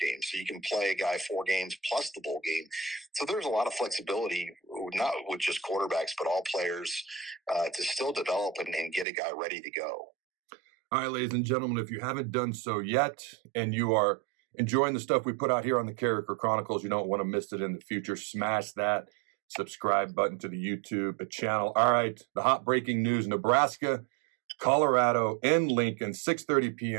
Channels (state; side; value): drops out; left; at 9.1 s